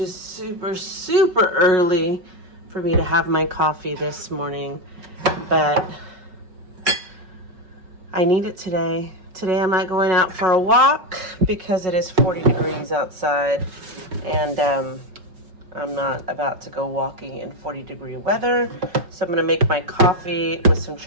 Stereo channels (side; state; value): left; late; 5.4 ms